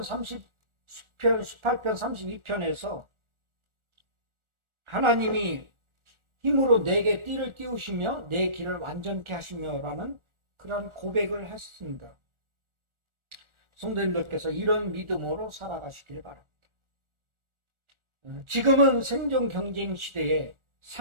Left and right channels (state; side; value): late; left; 1.4 ms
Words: 32편에서 하나님이 힘으로 내게 띠를 띄우시며 내 길을 완전케 하시며라는 그런 고백을 했습니다. 성도님들께서 이런 믿음으로 살아가시길 바랍니다. 지금은 생존 경쟁 시대에